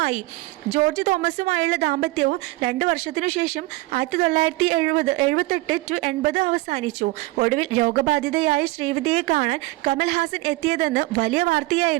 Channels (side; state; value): left; quieter; 21.0 dB